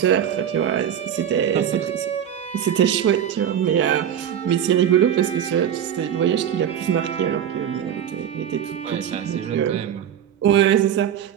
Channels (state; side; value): quieter; left; 9.4 dB